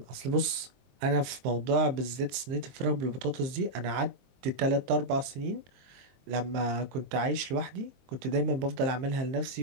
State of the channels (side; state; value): left; late; 23 ms